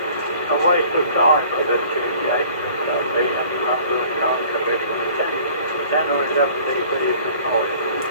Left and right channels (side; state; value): both; inverted; correlation -0.51